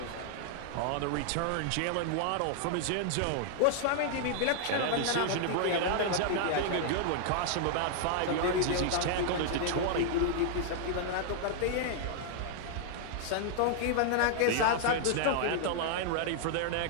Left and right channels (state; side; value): different; both; correlation -0.01